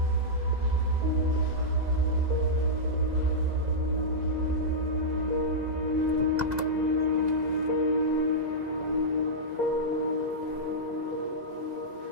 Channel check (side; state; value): left; late; 2.0 ms